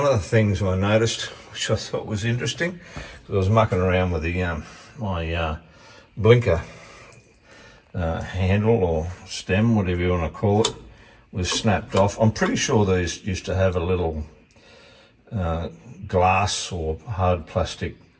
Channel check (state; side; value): identical; both; correlation 1.00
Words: of the things I noticed, which I thought was interesting, because I was mucking around with the my blinker handle or stem, whatever you want to call it, was snapped off. I'm pretty sure these used to have a little glass or hard plastic